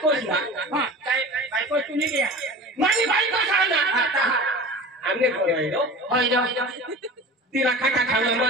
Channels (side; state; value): both; normal; correlation 0.36